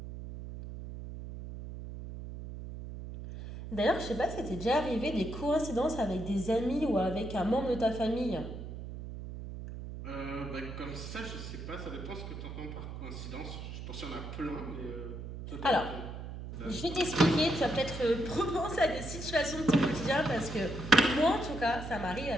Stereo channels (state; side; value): noise; right; hum, 9 dB below the sound